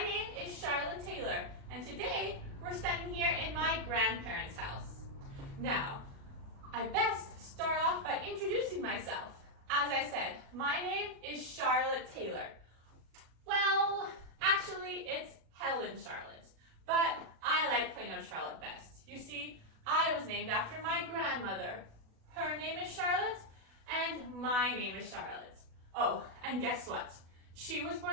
is Charlotte Taylor, and today we're standing here in my grandparents' house. Now, I best start off by introducing myself. As I said, my name is Charlotte Taylor. Well, actually, it's Helen Charlotte, but I like plain old Charlotte best. You see, I was named after my grandmother. Her name is Charlotte, and my name is Charlotte. Oh, and guess what? She was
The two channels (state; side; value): late; left; 37 ms